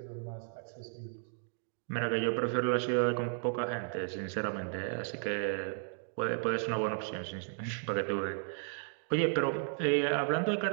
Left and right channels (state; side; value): silent; left; 55 dB below the other